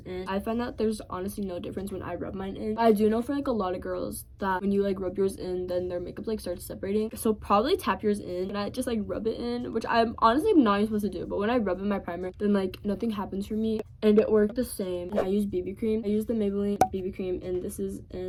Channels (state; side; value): identical; both; correlation 1.00